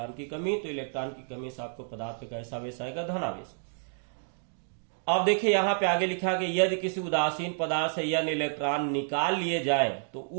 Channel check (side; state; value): left; silent; digital silence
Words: की कमी। तो इलेक्ट्रॉन की कमी से आपको पदार्थ पे कैसा आवेश आएगा, धनावेश। अब देखिए यहाँ पे आगे लिखा गया, यदि किसी उदासीन पदार्थ से यह इलेक्ट्रॉन निकाल लिए जाए तो